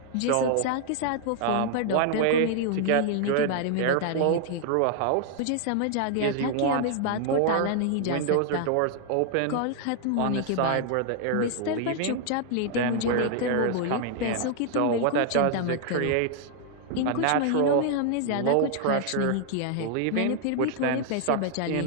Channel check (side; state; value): both; different; correlation 0.00